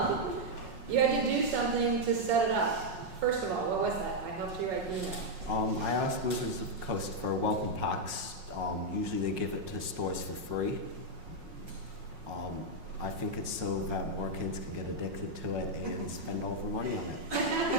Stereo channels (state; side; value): late; left; 5.5 ms